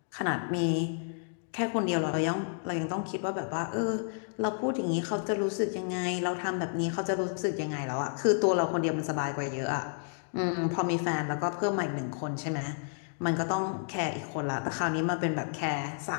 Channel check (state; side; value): silent; right; digital silence